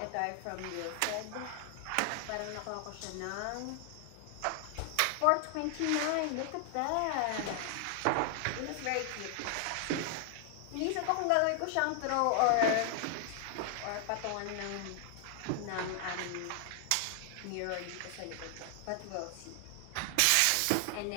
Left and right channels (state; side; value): different; both; correlation 0.00